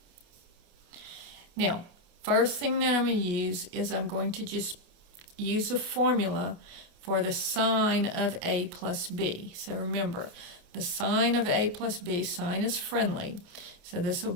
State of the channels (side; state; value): left; late; 28 ms